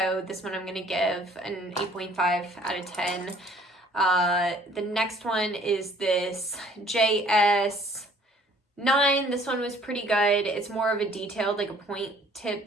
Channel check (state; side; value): normal; both; correlation 0.57